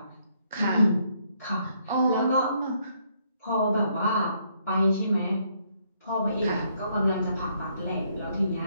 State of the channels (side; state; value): both; inverted; correlation -0.71